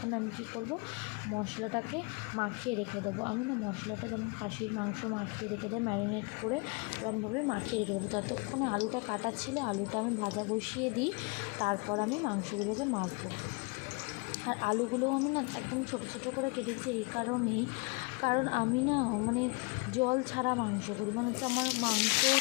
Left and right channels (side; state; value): right; quieter; 29.9 dB